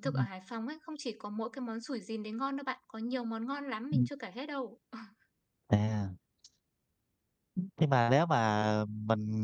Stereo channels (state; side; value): identical; both; correlation 1.00